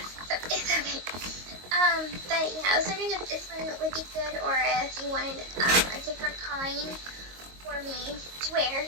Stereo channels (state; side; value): late; left; 22 ms